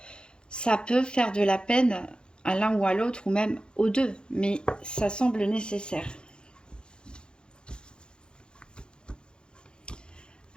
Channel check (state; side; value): late; right; 0.049 ms